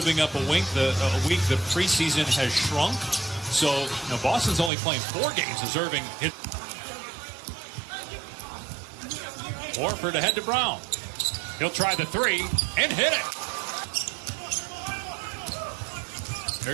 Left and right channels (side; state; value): left; drops out; at 4.7 s